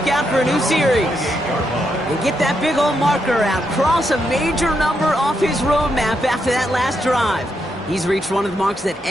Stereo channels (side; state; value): both; normal; correlation 0.81